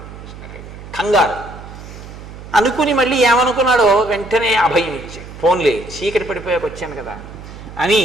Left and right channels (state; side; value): noise; right; hum, 14 dB below the sound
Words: కంగారు. అనుకుని మళ్ళీ ఏమనుకున్నాడో వెంటనే అభయం ఇచ్చాడు. ఫోన్లే, చీకటి పడిపోయాక వచ్చాను కదా అని,